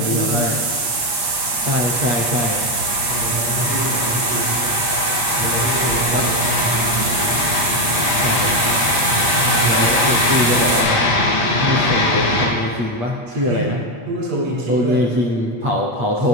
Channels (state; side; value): late; left; 8.4 ms